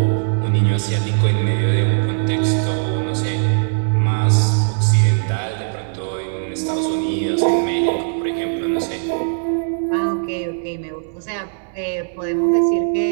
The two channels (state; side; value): silent; left; 66 dB below the other